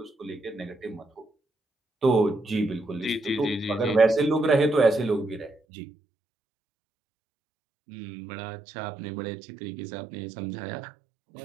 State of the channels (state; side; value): drops out; left; at 5.6 s